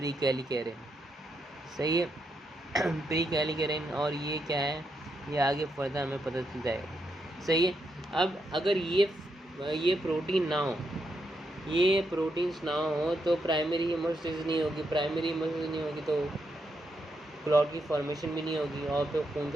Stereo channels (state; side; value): normal; both; correlation 0.81